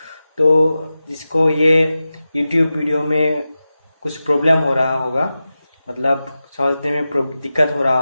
तो जिसको ये यूट्यूब वीडियो में कुछ प्रॉब्लम हो रहा होगा, मतलब समझने में दिक्कत हो रहा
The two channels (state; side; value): inverted; both; correlation -0.94